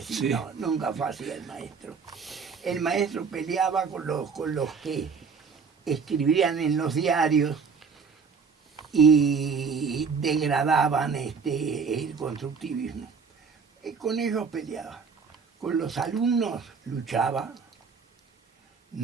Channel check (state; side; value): quieter; left; 5.6 dB